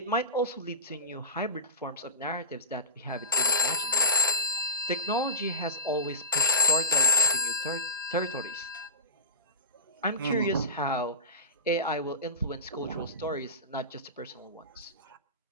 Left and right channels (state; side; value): inverted; both; correlation -0.30